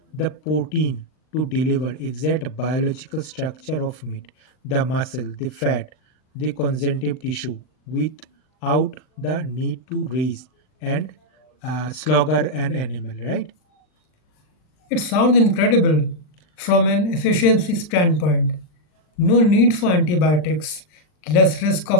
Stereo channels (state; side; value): late; right; 39 ms